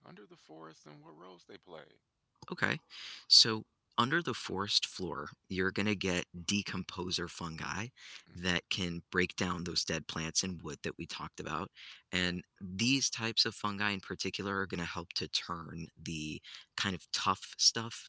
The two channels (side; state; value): both; identical; correlation 1.00